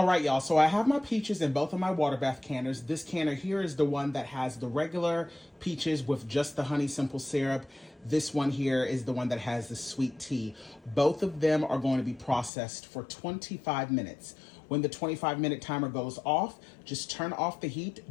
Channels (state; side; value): drops out; right; at 12.5 s